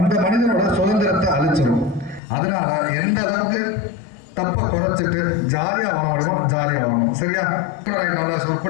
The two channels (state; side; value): drops out; right; at 2.2 s